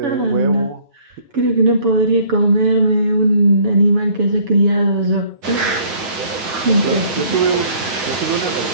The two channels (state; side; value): late; left; 7.0 ms